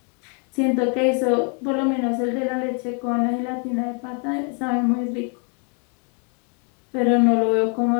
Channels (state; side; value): quieter; right; 37.5 dB